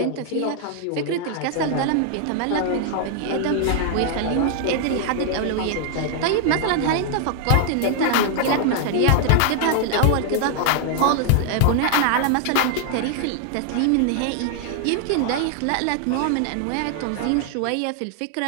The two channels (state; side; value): different; both; correlation 0.00